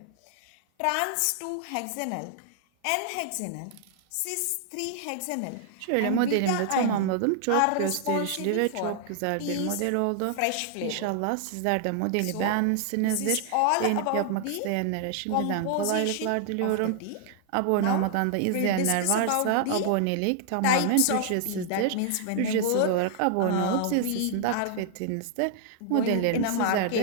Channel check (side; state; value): both; different; correlation 0.00